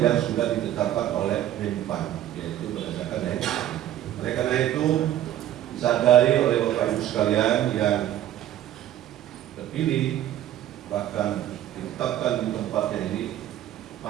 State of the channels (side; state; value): left; quieter; 12.3 dB